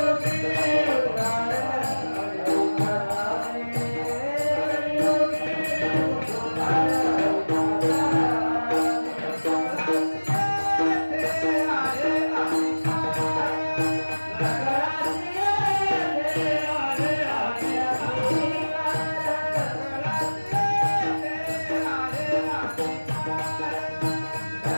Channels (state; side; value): inverted; both; correlation -1.00